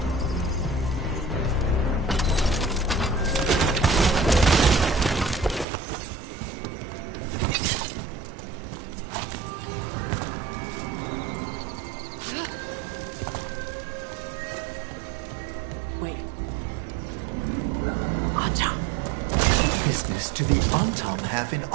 Wait. Anton. Business do the Anton have in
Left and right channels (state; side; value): drops out; left; at 5.7 s